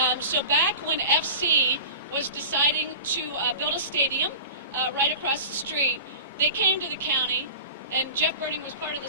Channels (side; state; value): both; inverted; correlation -0.34